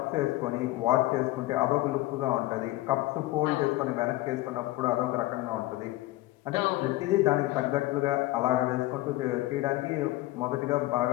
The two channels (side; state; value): right; quieter; 18.0 dB